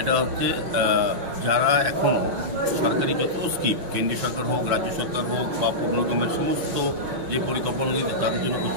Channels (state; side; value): late; left; 5.9 ms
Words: এটা হচ্ছে যারা এখনও সরকারি যত স্কিম, কেন্দ্রীয় সরকার হোক, রাজ্য সরকার হোক বা পৌর নিগমের সমস্ত যে পরিকল্পনাগুলি তাদের জন্য